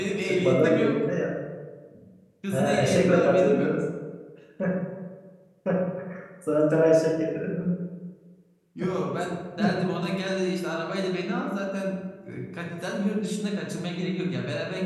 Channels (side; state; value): both; identical; correlation 1.00